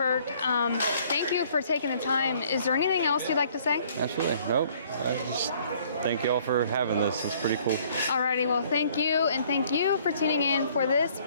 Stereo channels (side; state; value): both; inverted; correlation -0.60